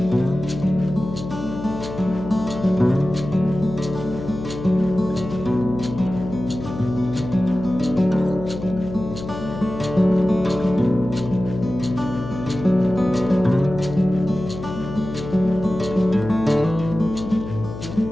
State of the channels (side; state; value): left; noise; hum, 9 dB below the sound